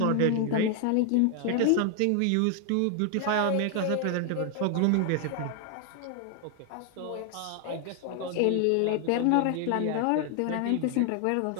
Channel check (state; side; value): different; both; correlation 0.00